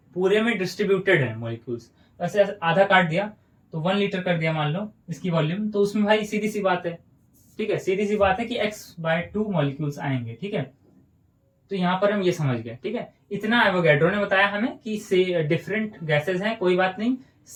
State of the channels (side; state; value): both; identical; correlation 1.00